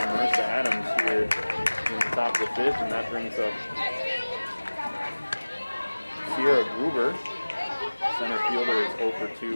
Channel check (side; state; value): both; inverted; correlation -1.00